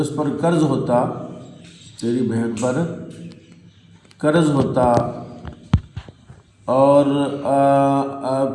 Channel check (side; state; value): both; identical; correlation 1.00